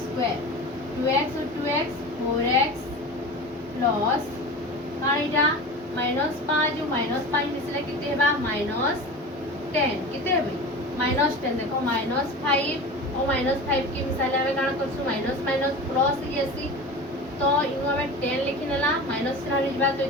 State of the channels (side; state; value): both; normal; correlation 0.32